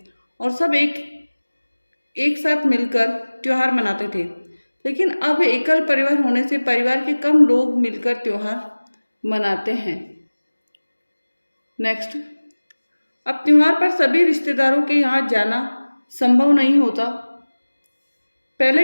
और सब एक साथ मिलकर त्योहार मनाते थे। लेकिन अब एकल परिवार होने से परिवार के कम लोग मिलकर त्योहार मनाते हैं। नेक्स्ट, अब त्योहार पर सभी रिश्तेदारों के यहाँ जाना संभव नहीं होता।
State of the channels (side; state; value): both; inverted; correlation -1.00